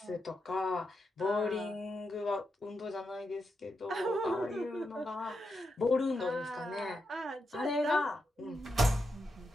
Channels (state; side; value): normal; both; correlation 0.85